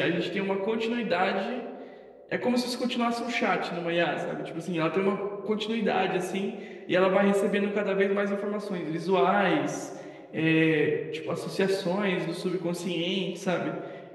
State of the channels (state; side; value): identical; both; correlation 1.00